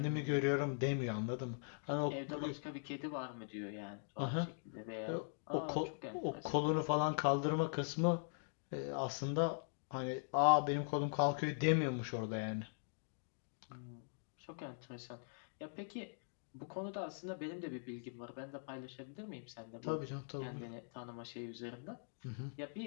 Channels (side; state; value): right; silent; digital silence